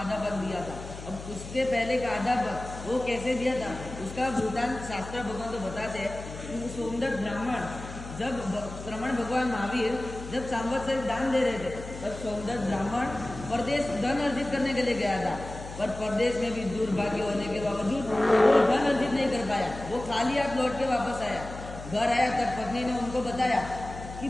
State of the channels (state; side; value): noise; left; hum, 12 dB below the sound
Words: पद दिया था। अब उसके पहले का आधा पद वो कैसे दिया था, उसका वृतांत शास्त्र भगवान तो बताते हैं कि वो सोमदत्त ब्राह्मण जब श्रमण भगवान महावीर जब सांवत्सरिक दान दे रहे थे, तब सोमदत्त ब्राह्मण परदेश धन अर्जित करने के लिए गया था, पर परदेश में भी दुर्भाग्य होने के बावजूद वो धन अर्जित नहीं कर पाया। वो खाली हाथ लौट के वापस आया। घर आया तब पत्नी ने उनको बताया कि